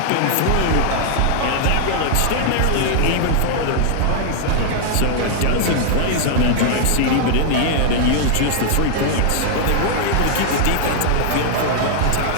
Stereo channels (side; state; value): both; different; correlation 0.00